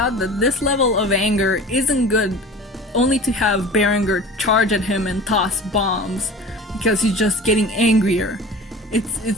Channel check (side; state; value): both; normal; correlation 0.38